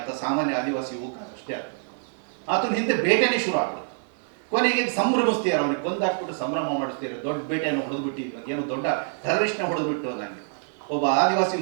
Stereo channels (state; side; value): silent; left; 61 dB below the other